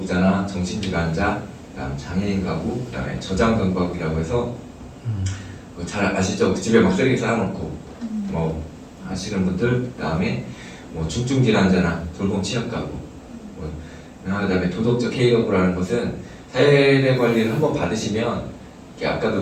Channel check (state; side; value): identical; both; correlation 1.00